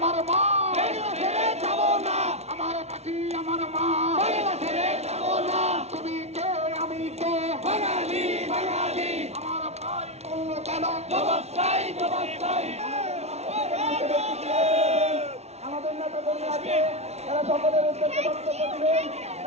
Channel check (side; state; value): left; late; 0.31 ms